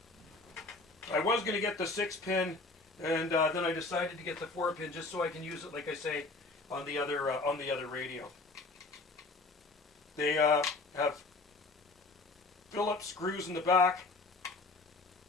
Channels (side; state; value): right; quieter; 3.4 dB